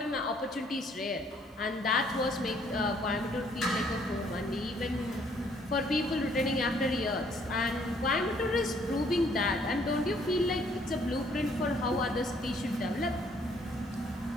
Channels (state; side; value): normal; both; correlation 0.64